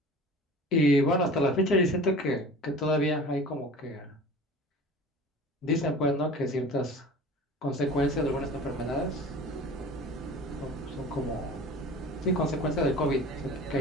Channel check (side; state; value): both; normal; correlation 0.40